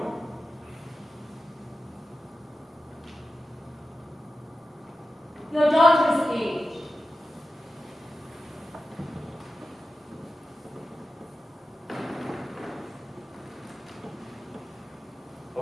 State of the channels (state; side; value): normal; both; correlation 0.92